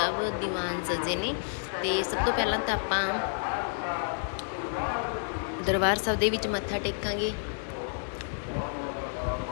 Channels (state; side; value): silent; right; digital silence